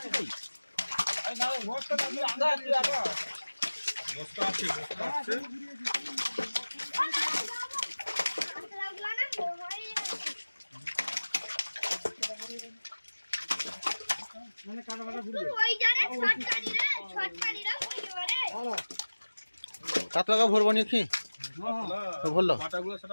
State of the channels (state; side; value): inverted; both; correlation -1.00